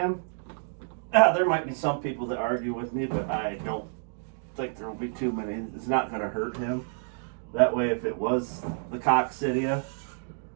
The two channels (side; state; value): left; silent; digital silence